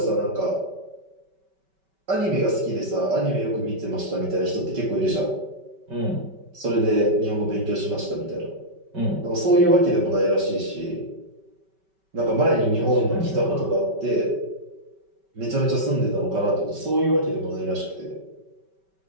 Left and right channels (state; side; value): late; left; 5.2 ms